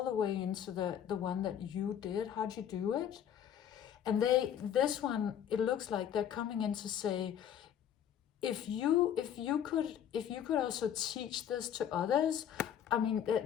the way into the one that you did? How'd you do it? And this one, it looks like they're coming in to say, if you could also teach this to others, I mean,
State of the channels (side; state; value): right; quieter; 9.5 dB